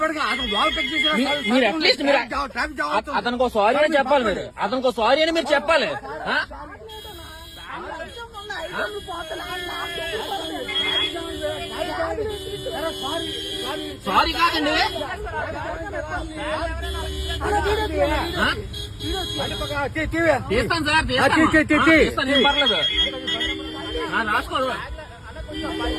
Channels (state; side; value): identical; both; correlation 1.00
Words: మీరు అట్లీస్ట్ మీరు అతనికి సారీ అని చెప్పాలి. మీరు అతనికి సారీ అని మీరు చెప్పాలి. సారీ కాదండి, తీస్తాను సార్, తీస్తాను, ఏం పర్లేదు. రాసుకోరు